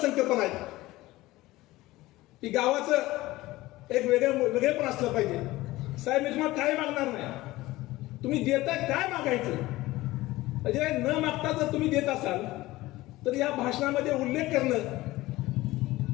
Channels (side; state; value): right; quieter; 18.3 dB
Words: आहेत की गावाचं एक वेगळेपण असलं पाहिजे. साहेब, मी तुम्हाला काय मागणार नाही, तुम्ही देताय काय मागायचं, म्हणजे न मागता जर तुम्ही देत असाल तर या भाषणामध्ये उल्लेख करणं,